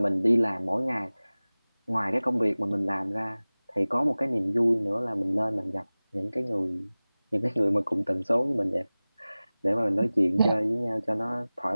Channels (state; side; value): inverted; both; correlation -0.98